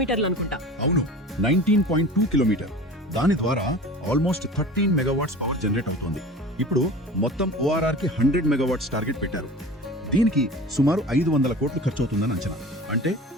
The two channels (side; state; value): both; normal; correlation 0.38